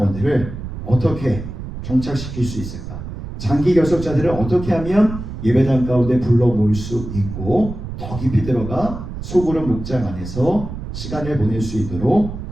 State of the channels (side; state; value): right; noise; rumble, 9 dB below the sound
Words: 어떻게 정착시킬 수 있을까? 장기 결석자들을 어떻게 하면 예배당 가운데 불러 모을 수 있고 더 깊이 들어가 소그룹 목장 안에서 시간을 보낼 수 있도록